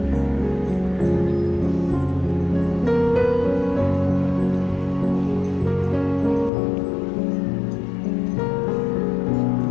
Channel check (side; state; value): right; drops out; at 6.5 s